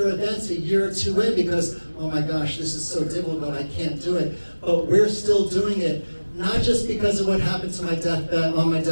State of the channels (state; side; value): inverted; both; correlation -1.00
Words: events a year or two in because, oh my gosh, this is so difficult, I can't do it. But we're still doing it, not just because of what happened to my deathbed, on my